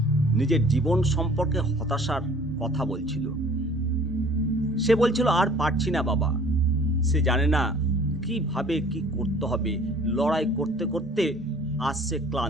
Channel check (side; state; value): both; normal; correlation 0.51